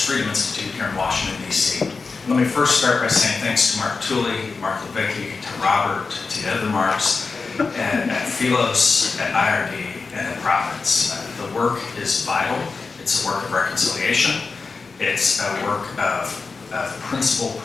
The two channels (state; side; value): quieter; right; 4.4 dB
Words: Freedom Institute here in Washington, D.C. Let me first start by saying thanks to Mark Tooley, Mark Levicki, to Robert, to the other Marks, and at Philos, at IRD, and at Providence. The work is vital. It's a work of reconciliation. It's a work of principled